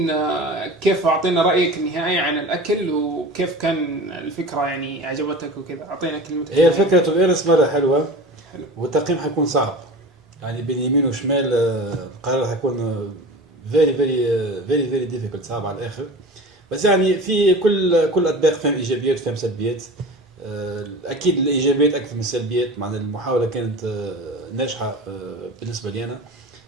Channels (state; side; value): normal; both; correlation 0.35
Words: كيف اعطينا رايك النهائي عن الاكل وكيف كان الفكره يعني عجبتك وكذا. اعطينا كلمتك. هي الفكره تو بيونس مره حلوه والتقييم حيكون صعب يعني بين يمين وشمال. القرار حيكون فيري ديفيكولت صعب على الاخر. بس يعني في كل اطباق فيهم ايجابيات وفيهم سلبيات. اكيد الايجابيات اكثر من السلبيات. مع المحاوله كانت ناجحه بالنسبه لي انا